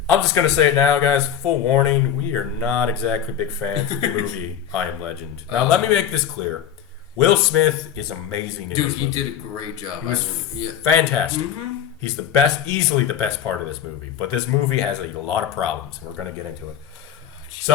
I'm just gonna say it now, guys. Full warning: we are not exactly big fans of the movie I Am Legend. Now, let me make this clear: Will Smith is amazing. Dude, he did a great job. He was fantastic. Mm-hmm. He's the best, easily the best part of this movie. But this movie has a lot of problems, and we're gonna get into it.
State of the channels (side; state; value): right; quieter; 9.3 dB